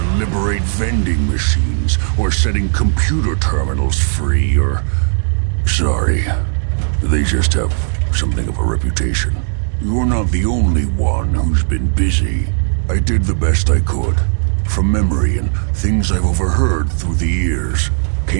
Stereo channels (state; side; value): silent; left; digital silence